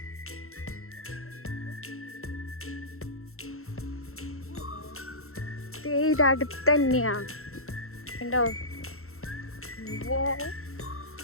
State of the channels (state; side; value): late; right; 0.62 ms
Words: ഇത് അടുത്ത് തന്നെയാ ഉണ്ടോ.